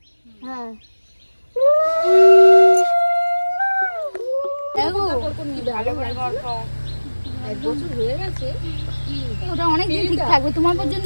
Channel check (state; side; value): inverted; both; correlation -1.00